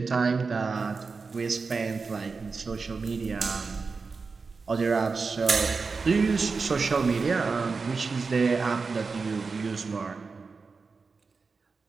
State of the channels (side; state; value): left; quieter; 4.6 dB